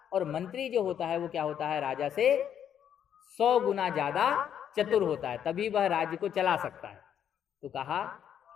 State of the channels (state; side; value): quieter; right; 9.2 dB